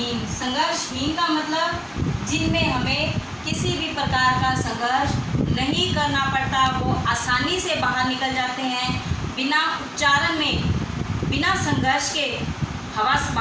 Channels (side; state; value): both; identical; correlation 1.00